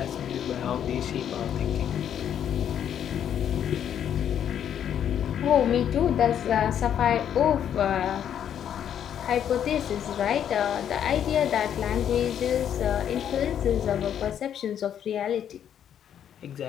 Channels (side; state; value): right; quieter; 9.4 dB